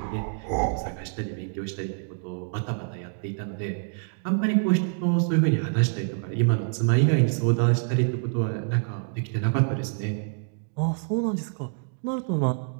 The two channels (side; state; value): left; silent; 61 dB below the other